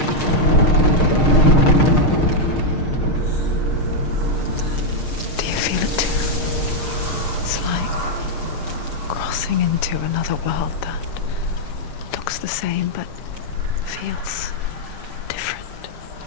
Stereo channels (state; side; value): late; right; 6.5 ms